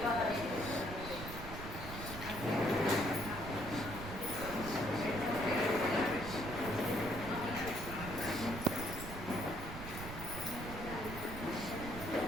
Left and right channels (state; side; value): noise; right; rumble, 8 dB below the sound